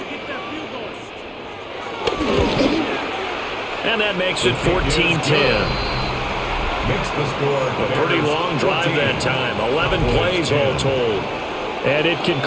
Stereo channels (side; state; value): both; identical; correlation 1.00